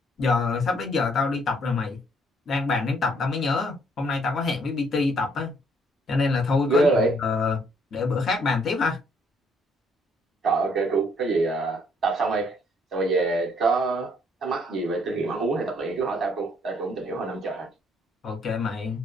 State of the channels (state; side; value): normal; both; correlation 0.66